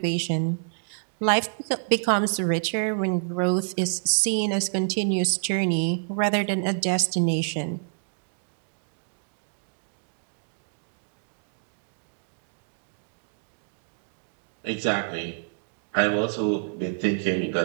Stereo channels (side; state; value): left; silent; digital silence